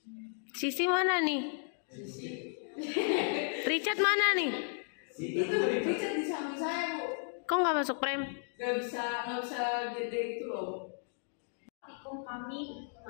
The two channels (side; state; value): right; silent; 55 dB below the other